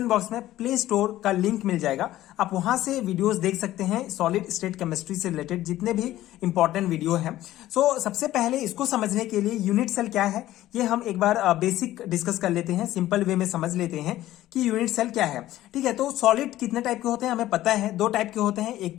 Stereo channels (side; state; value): right; quieter; 14.7 dB